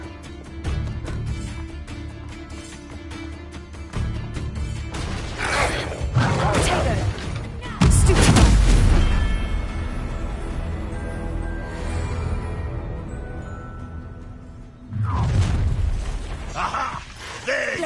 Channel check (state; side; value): identical; both; correlation 1.00